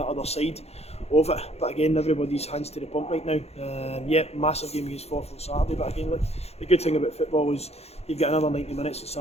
other side of it, but again, everybody's hands to the pump right now. Massive game against Forfar on Saturday, but again, look, the good thing about football is you've got another 90 minutes on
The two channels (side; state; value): right; late; 0.30 ms